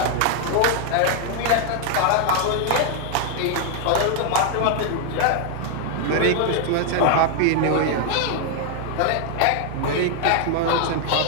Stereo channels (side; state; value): both; different; correlation 0.00